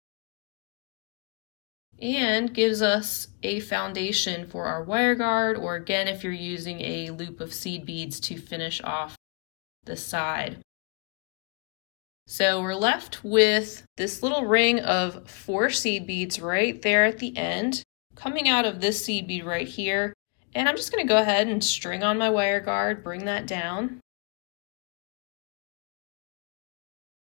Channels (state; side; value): quieter; right; 35.2 dB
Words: And gives us a foundation for our wire guard, or again, if you're using a loop of seed beads to finish off the side. So we're left with this little ring of 4 seed beads right there at the end, coming out of this seed bead right here. And I'm just going to go ahead and string on my wire guard, bring that down.